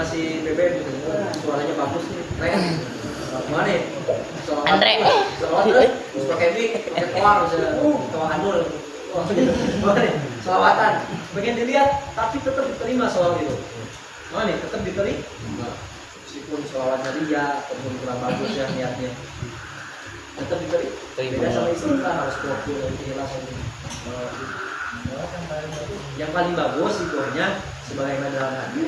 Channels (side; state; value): both; identical; correlation 1.00